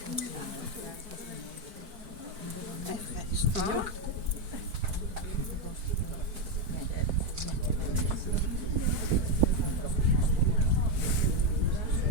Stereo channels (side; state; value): left; late; 4.5 ms